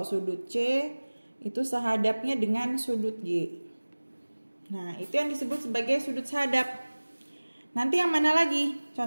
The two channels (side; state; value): both; inverted; correlation -1.00